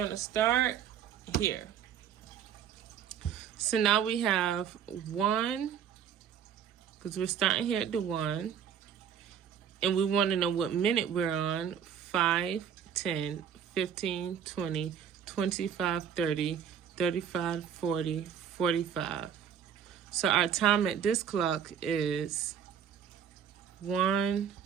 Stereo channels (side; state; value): left; quieter; 8.4 dB